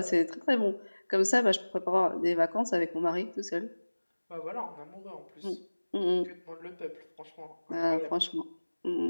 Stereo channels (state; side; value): inverted; both; correlation -1.00